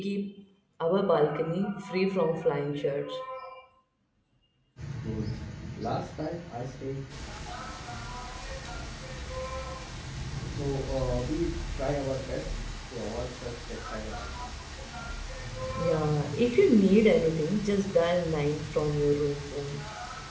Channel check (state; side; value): identical; both; correlation 1.00